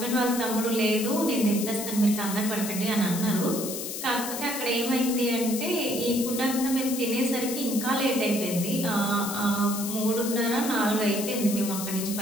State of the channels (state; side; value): noise; left; hiss, 6 dB below the sound